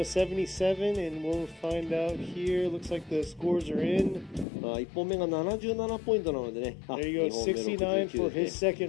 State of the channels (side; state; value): right; drops out; at 4.5 s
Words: 77? And we'll find out here. Looks like the scores are in. 1本目が77ポイントなのでね。 There you go, 2本目69 for 69 his ですね。